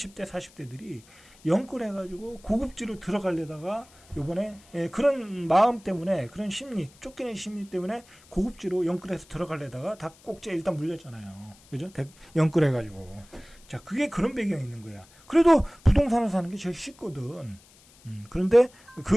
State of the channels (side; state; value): left; noise; hiss, 26 dB below the sound